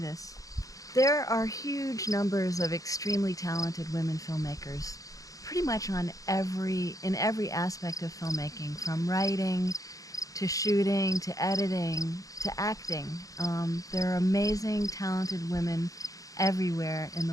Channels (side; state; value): right; late; 0.17 ms